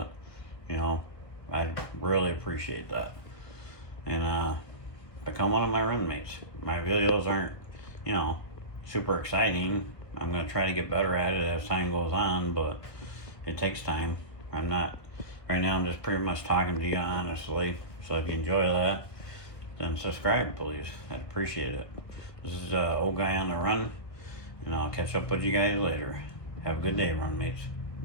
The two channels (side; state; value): right; late; 1.5 ms